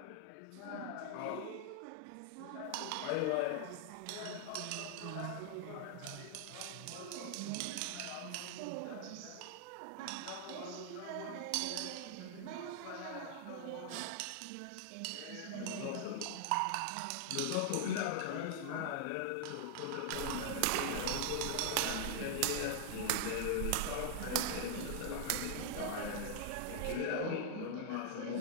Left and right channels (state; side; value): different; both; correlation 0.00